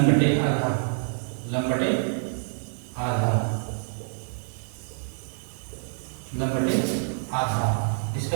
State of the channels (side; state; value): left; silent; digital silence